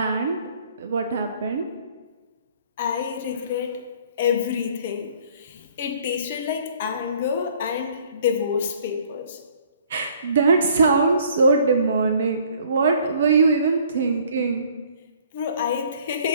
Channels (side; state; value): both; inverted; correlation -0.57